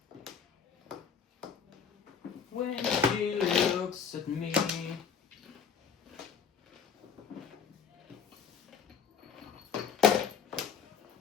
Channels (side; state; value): right; quieter; 6.8 dB